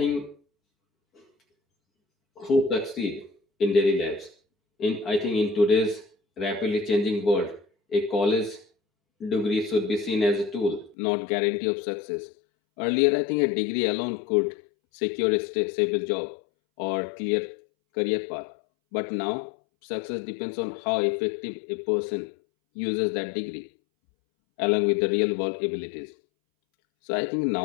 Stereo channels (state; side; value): drops out; right; at 11.0 s